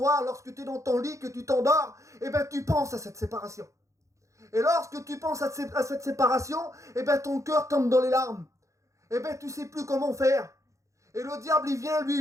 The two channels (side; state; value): left; late; 0.15 ms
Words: lorsque tu es dans ton lit, que tu t'endors, eh bien tu penses à cette séparation. Et lorsque tu penses à cette séparation, eh bien ton cœur tombe dans les larmes. Eh bien tu ne sais plus comment faire. Et le diable, il vient